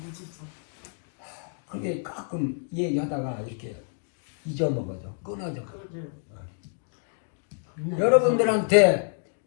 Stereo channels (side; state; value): right; silent; digital silence